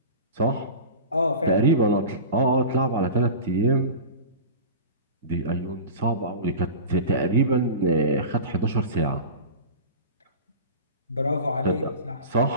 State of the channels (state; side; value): inverted; both; correlation -0.32